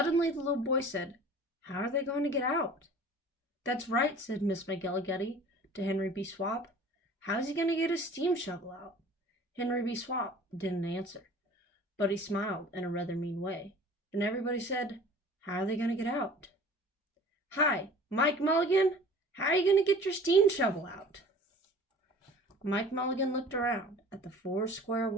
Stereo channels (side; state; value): both; normal; correlation 0.45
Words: the little boy said, "How are they going to get out?" "That's right," said Miss McGillicuddy to Henry B. Swap. "How's he going to get his steam shovel out?" Henry B. Swap didn't answer, but he smiled in a rather mean way, and everybody said, "How are they going to get out?" "Hi, Mike Mulligan, how are you going to get your steam shovel out?" Mike Mulligan looked around at the 4 square